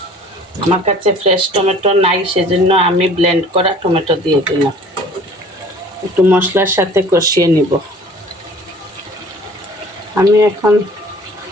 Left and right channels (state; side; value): normal; both; correlation 0.49